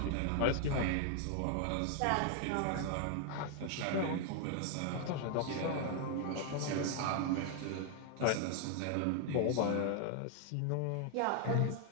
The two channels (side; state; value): both; different; correlation 0.00